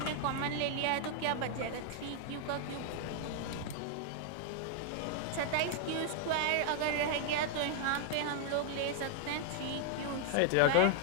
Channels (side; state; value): both; different; correlation 0.00